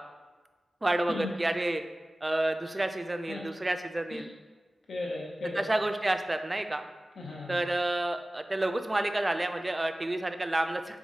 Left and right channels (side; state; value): both; normal; correlation 0.97